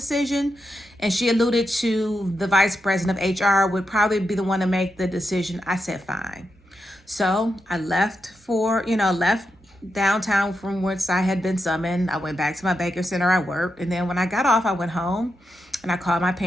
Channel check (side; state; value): both; normal; correlation 0.86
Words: And she alluded to the vice president of HR would probably be the one to make the decision. I said, fine. So I left downtown from which I had been summoned. I went back to my banking center I worked. And then when I got off, I went home and I called my